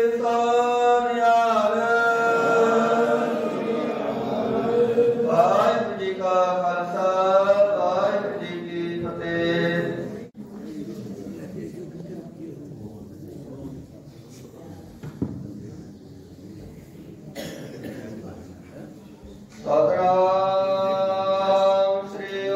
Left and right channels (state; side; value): identical; both; correlation 1.00